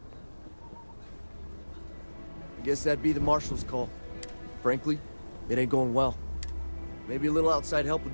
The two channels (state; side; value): inverted; both; correlation -1.00